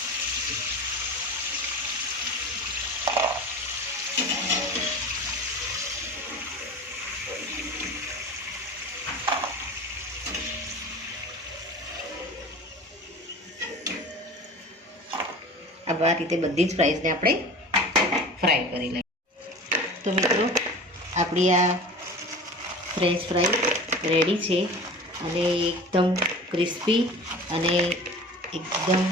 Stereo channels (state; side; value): normal; both; correlation 0.37